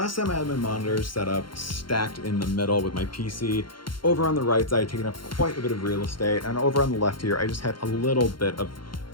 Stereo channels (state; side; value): late; right; 0.73 ms